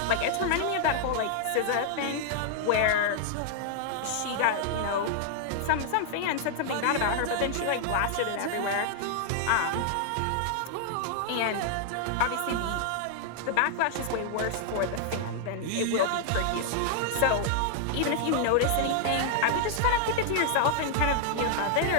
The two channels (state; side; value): different; both; correlation -0.01